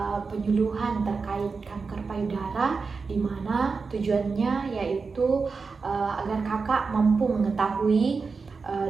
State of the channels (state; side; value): quieter; left; 4.7 dB